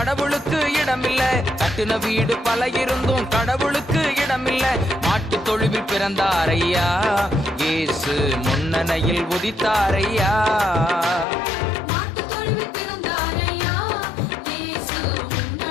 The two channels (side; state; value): right; drops out; at 11.2 s